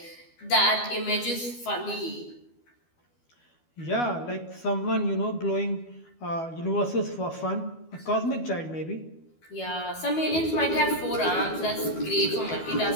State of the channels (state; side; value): late; right; 12 ms